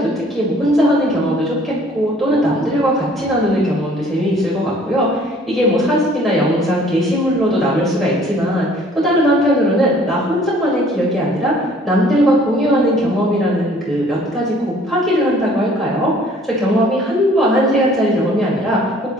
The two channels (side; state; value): both; normal; correlation 0.56